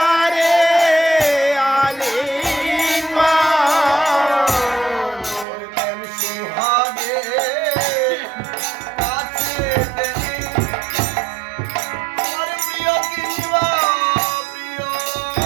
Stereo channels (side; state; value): left; drops out; at 5.5 s